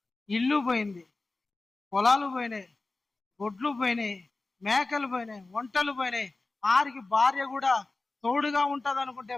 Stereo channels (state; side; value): quieter; right; 3.4 dB